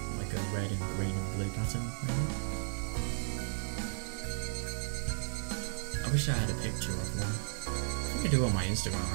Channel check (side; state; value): left; silent; digital silence